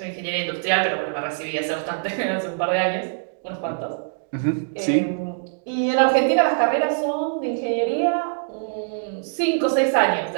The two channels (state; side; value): silent; left; digital silence